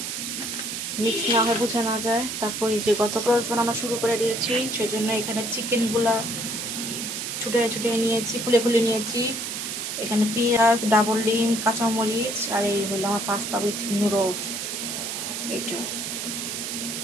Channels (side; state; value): right; noise; hiss, 4 dB below the sound